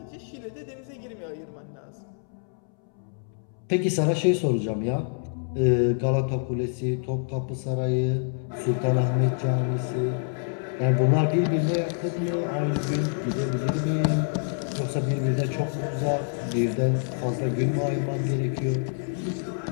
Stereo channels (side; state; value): right; silent; 60 dB below the other